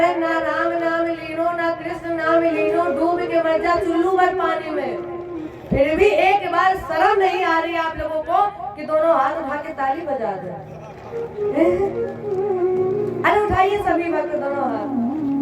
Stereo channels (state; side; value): identical; both; correlation 1.00